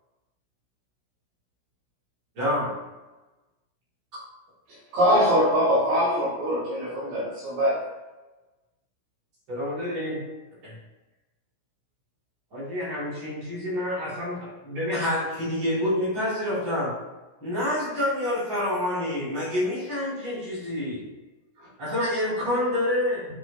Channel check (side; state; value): left; late; 17 ms